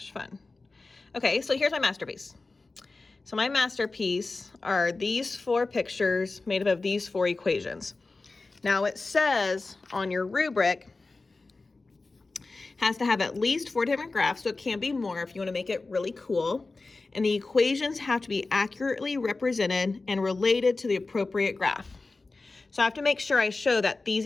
fun. Okay, so here's my masterpiece. So my masterpiece are these 4 pictures made up of these 4 equations. Now it says on your rubric, has to have at least 4 different graphs, so it can be more if you want to make it really cool. And the equations have to be accurately represented and related to the appropriate graph. So I have to make sure I show that these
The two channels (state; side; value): quieter; right; 3.6 dB